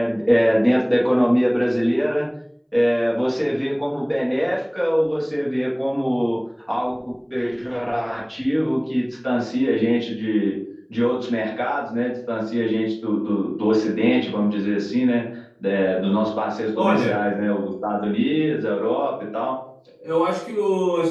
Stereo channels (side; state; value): both; identical; correlation 1.00